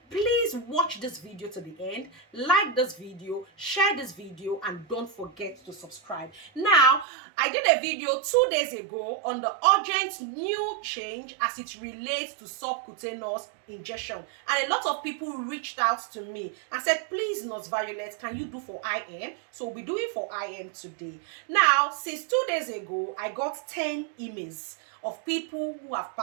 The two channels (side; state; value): left; drops out; at 7.1 s